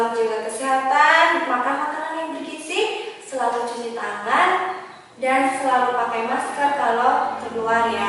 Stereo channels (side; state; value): both; identical; correlation 1.00